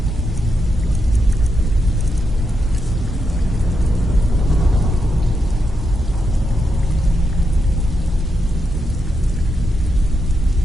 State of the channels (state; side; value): normal; both; correlation 0.84